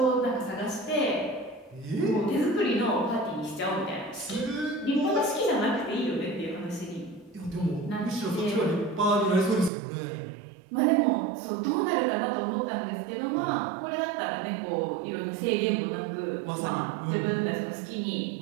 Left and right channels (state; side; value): drops out; left; at 9.7 s